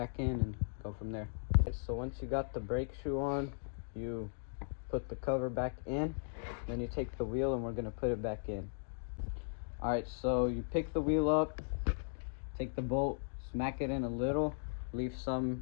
in and go from there. So once you got the brake shoe on, you put the cover back in, then you take the wheel and we're gonna put it back in. Alright, so you pick the wheel up, take the bolt, smack it in a little, leave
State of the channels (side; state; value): right; silent; digital silence